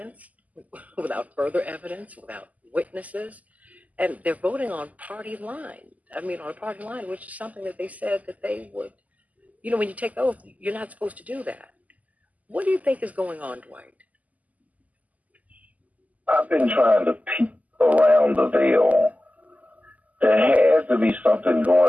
without further evidence, without witnesses. And they're voting on party line. On a party line, which is something that they said that they would, when you take the oath, you're not supposed to do that. What do you think is going on, Dwight? I've been trying to peek around the veil. There has to be something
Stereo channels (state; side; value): late; left; 0.076 ms